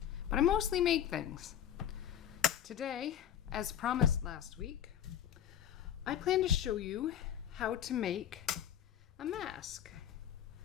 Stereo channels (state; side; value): quieter; right; 10.0 dB